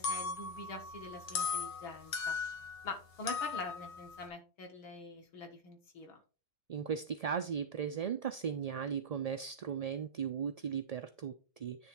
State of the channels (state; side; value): late; right; 1.7 ms